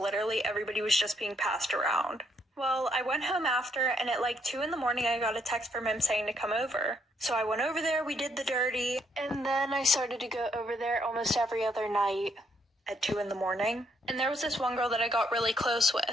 everybody was just being passed around. Well, I went home after, and at like 2 in the morning, I got a text from him saying to come over. So I went over there, we did the dirty, and then I started to go over there almost every other night at 2 in the morning. And there was this one girl that I got really close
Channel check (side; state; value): both; normal; correlation 0.73